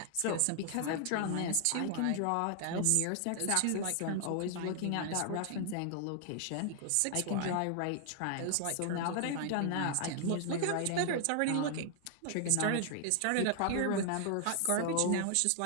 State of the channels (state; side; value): different; both; correlation 0.00